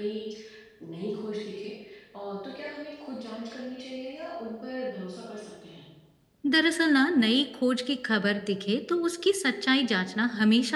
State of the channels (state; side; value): identical; both; correlation 1.00